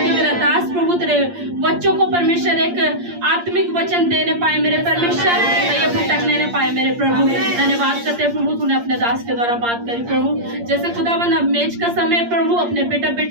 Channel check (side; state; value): left; late; 8.6 ms